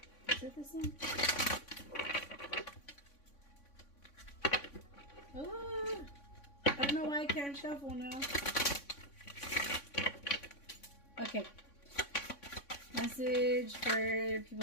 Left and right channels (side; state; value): right; late; 3.5 ms